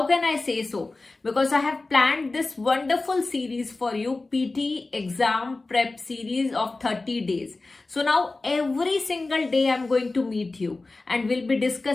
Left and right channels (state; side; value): quieter; right; 3.4 dB